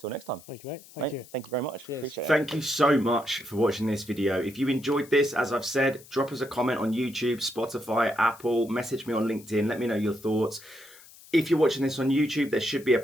next time. Thank you, mate. Thank you. Thank you very much. Cheers. Appreciate it. Thank you so much for watching this video. If you enjoyed this, as I've said, drop us a comment on YouTube, Spotify, Apple, message me on LinkedIn, let me know your thoughts. If you're watching this on YouTube, there should be a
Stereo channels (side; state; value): left; noise; hiss, 22 dB below the sound